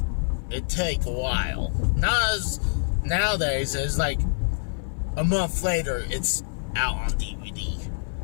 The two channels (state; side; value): silent; right; 56 dB below the other